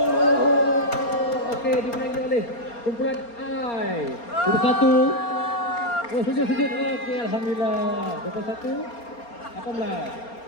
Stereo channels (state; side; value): late; right; 4.3 ms